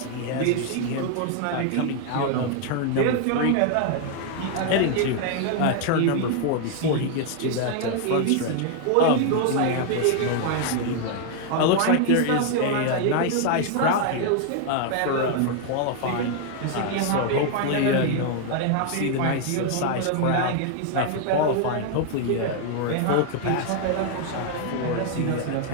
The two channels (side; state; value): both; different; correlation 0.00